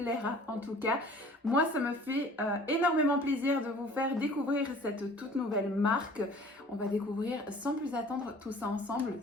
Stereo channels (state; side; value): normal; both; correlation 0.49